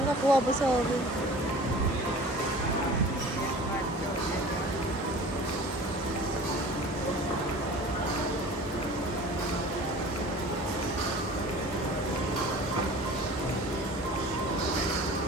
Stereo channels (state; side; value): normal; both; correlation 0.42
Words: Nakakuha ba sa oven?